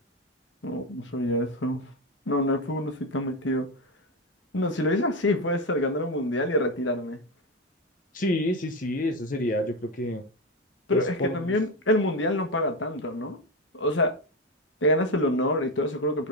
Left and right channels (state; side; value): normal; both; correlation 0.14